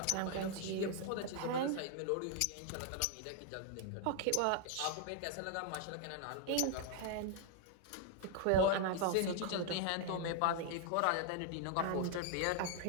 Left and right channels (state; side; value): different; both; correlation 0.00